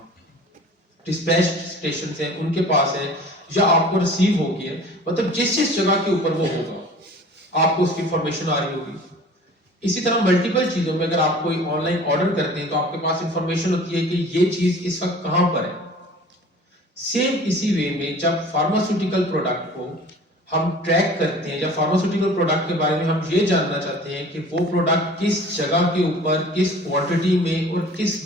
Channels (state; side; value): normal; both; correlation 0.45